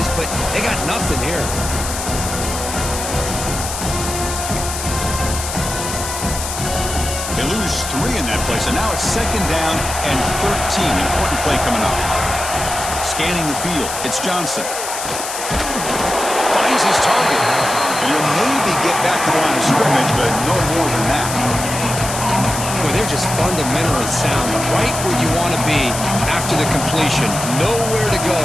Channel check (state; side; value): noise; left; hiss, 6 dB below the sound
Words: but they got nothing here. They lose 3 in that play, so now it's second down and 13. Important play coming up. Scanning the field, it's Johnson. Finds his target. And he'll maybe get back to the line of scrimmage, but no more than that. Well, they're just fundamentally sound, right where you want to be after the completion. Nowhere to go